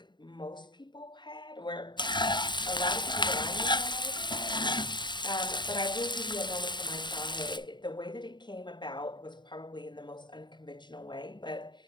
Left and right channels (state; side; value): late; right; 0.22 ms